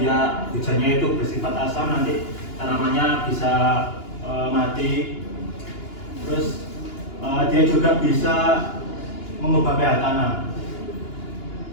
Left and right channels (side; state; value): right; late; 2.9 ms